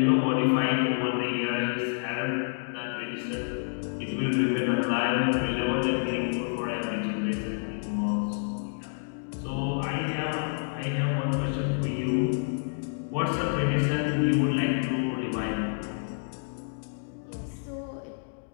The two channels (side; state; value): right; silent; digital silence